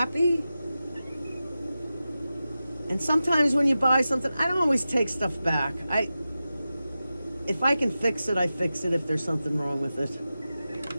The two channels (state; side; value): inverted; both; correlation -0.93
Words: And sometimes when you buy something, I don't always take stuff back. If I can fix it, I fix it if there's something wrong with it.